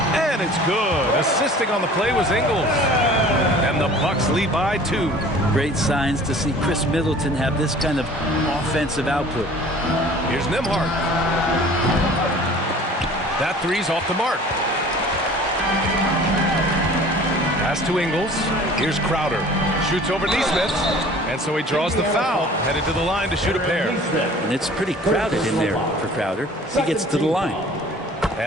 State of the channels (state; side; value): normal; both; correlation 0.47